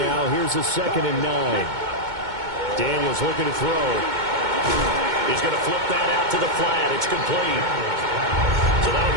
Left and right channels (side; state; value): left; late; 2.2 ms